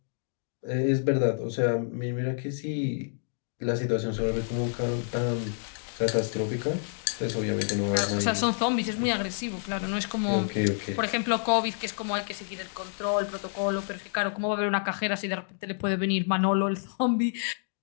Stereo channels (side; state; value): right; silent; digital silence